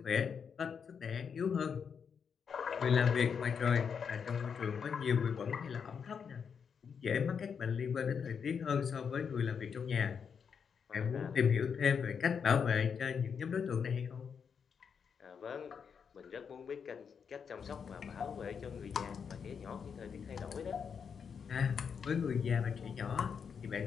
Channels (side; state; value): right; quieter; 6.6 dB